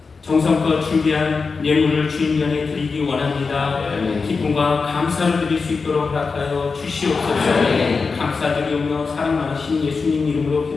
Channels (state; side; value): quieter; right; 4.7 dB